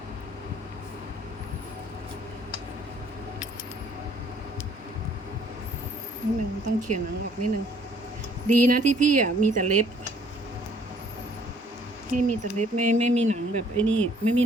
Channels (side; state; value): both; normal; correlation 0.61